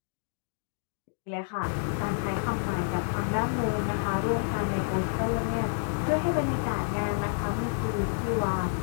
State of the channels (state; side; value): silent; right; digital silence